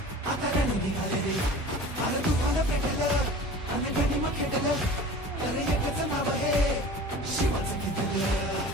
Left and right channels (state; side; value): normal; both; correlation 0.40